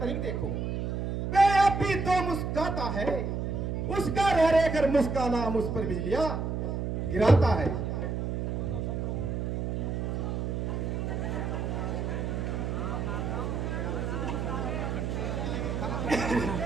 देखो, वह अब भी तो मुस्काता है, उसका रह रहकर मुस्काना मुझ पर बिजलियां गिराता है।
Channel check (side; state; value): right; noise; hum, 2 dB below the sound